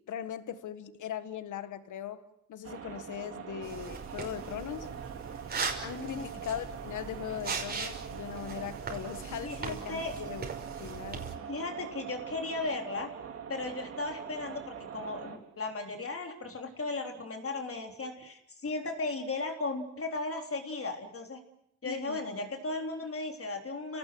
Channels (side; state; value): both; normal; correlation -0.17